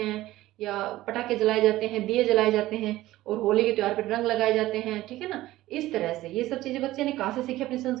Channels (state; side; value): quieter; left; 16.2 dB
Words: या पटाखे जलाए जाते हैं, दिए जलाए जाते हैं, और होली के त्योहार पर रंग लगाए जाते हैं, ठीक है ना। इस तरह से ये सब चीजें बच्चे ने कहाँ से सीखी? अपनी